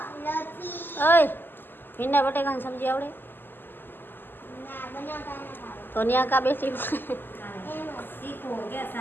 ઓય ભીંડા બટેકાની સબ્જી આવડે? તો ન્યા કા બેસી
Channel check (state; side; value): late; right; 0.095 ms